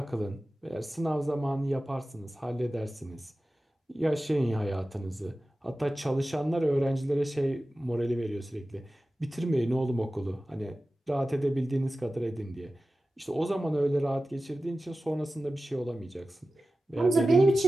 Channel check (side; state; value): both; normal; correlation 0.95